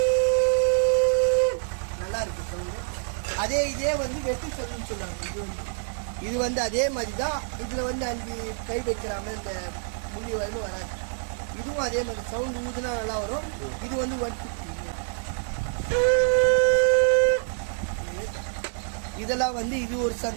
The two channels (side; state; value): left; silent; digital silence